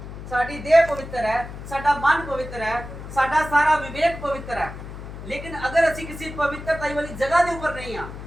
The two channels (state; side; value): noise; left; hum, 11 dB below the sound